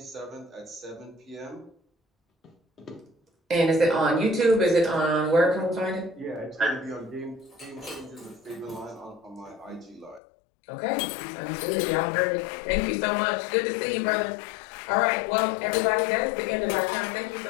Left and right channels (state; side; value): drops out; right; at 10.2 s